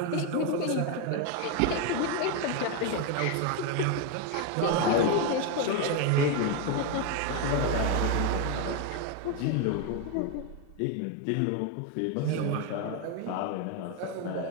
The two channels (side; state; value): both; different; correlation 0.02